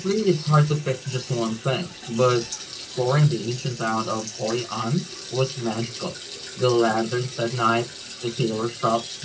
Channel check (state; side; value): identical; both; correlation 1.00